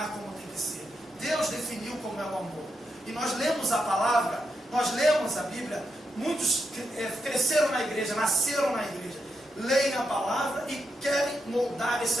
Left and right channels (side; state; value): both; normal; correlation 0.84